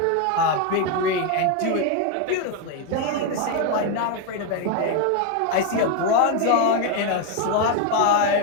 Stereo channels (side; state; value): both; different; correlation 0.02